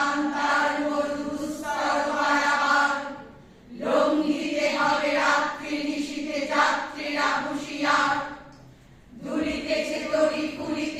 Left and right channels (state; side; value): identical; both; correlation 1.00